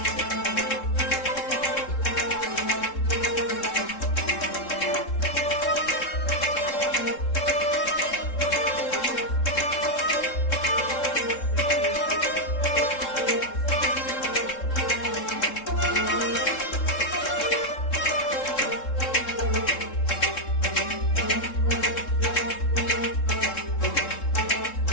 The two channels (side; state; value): right; late; 3.7 ms